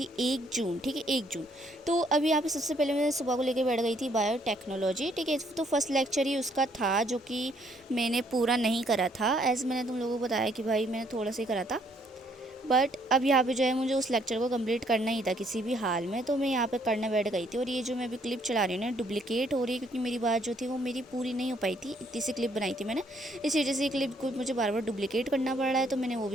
1 जून, ठीक है, 1 जून। तो अभी यहाँ पे सबसे पहले मैं सुबह को लेकर बैठ गई थी बायोटेक्नोलॉजी, ठीक है। तो फर्स्ट लेक्चर ही उसका था जो कि मैंने पूरा नहीं करा था, एज मैंने तुम लोगों को बताया कि भाई मैंने थोड़ा सा ही करा था। बट अब यहाँ पे जो है मुझे उस लेक्चर को कंप्लीट करना ही था किसी भी हाल में, तो मैं यहाँ पे करने बैठ गई थी। और ये जो मैं अभी क्लिप चला रही हूँ ना, डुप्लीकेट हो रही है, क्योंकि मेरी बात जो थी वो मेरी पूरी नहीं हो पाई थी। इतनी सी क्लिप बनाई थी मैंने, इस वजह से क्लिप को मुझे बार बार डुप्लीकेट करना पड़ रहा है। तो मैंने वो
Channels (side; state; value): both; normal; correlation 0.67